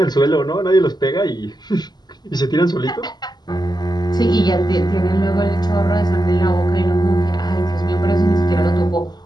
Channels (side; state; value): right; late; 0.20 ms